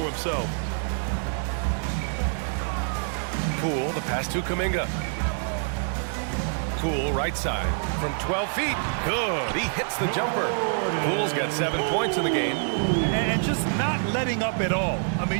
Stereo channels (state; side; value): silent; left; 61 dB below the other